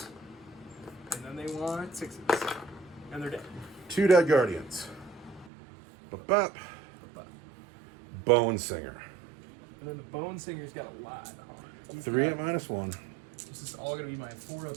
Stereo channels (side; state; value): left; drops out; at 5.5 s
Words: And then they want 6s. And they're dead. 2 dead Guardians. Bop. But- Bone Singer. And then the Bone Singer's got a lot on it. 3 at -1. This is all going to be my